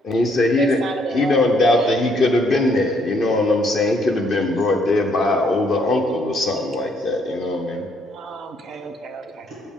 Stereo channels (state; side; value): normal; both; correlation 0.69